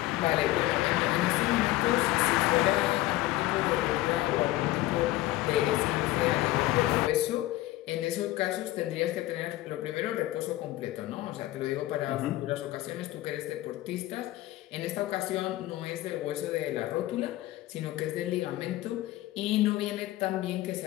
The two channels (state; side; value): quieter; right; 16.6 dB